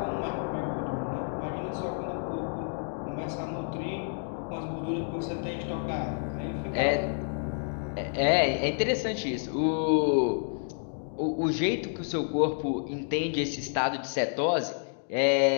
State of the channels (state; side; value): silent; right; digital silence